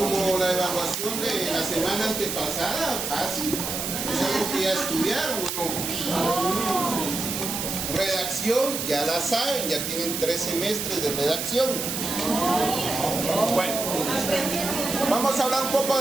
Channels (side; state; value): right; noise; hiss, 3 dB below the sound